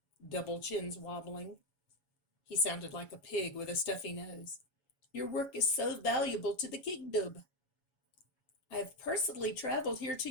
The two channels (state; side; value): late; right; 7.2 ms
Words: double chins wobbling. He sounded like a pig with a stuffy nose. "Your work is so valuable to the kingdom. I have personally traveled here to